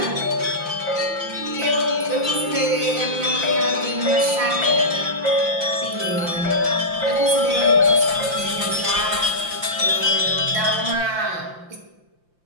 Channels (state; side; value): late; left; 5.8 ms